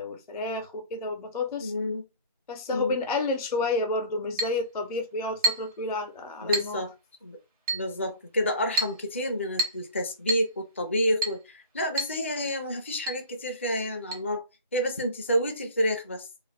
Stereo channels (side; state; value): both; inverted; correlation -0.43